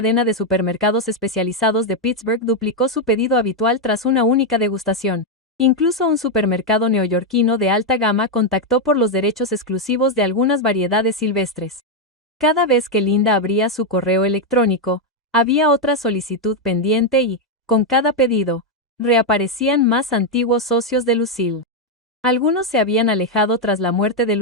de supermercados especializados de Pittsburgh duplicó su pedido habitual tras una única degustación. Incluso un supermercado neoyorquino de alta gama contactó por los derechos exclusivos de algunas variedades silvestres. Cada vez que Linda abría su correo electrónico, había otra solicitud pendiente y, con cada pedido, reaparecían más antiguos socios de Lucille. Algunos se habían alejado tras la muerte de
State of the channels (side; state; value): both; normal; correlation 0.02